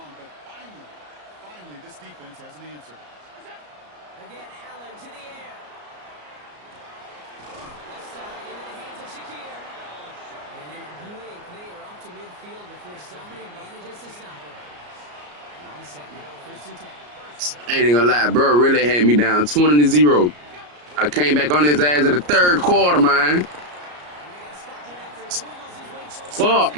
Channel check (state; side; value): late; left; 34 ms